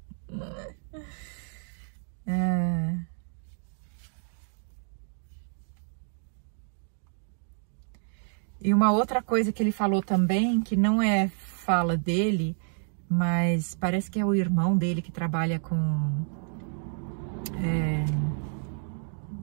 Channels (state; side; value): silent; left; 56 dB below the other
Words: E uma outra coisa que ele falou também, que não é fala dele, mas parece que é o irmão dele que trabalha com,